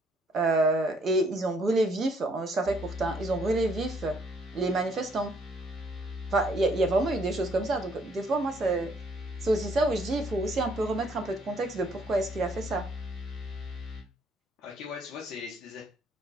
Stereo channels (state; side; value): normal; both; correlation 0.67